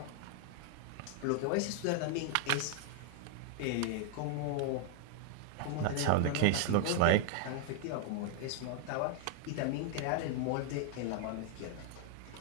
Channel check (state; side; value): different; both; correlation 0.00